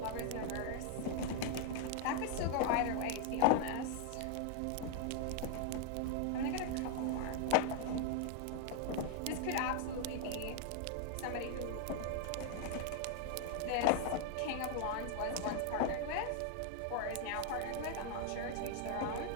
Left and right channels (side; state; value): both; different; correlation 0.00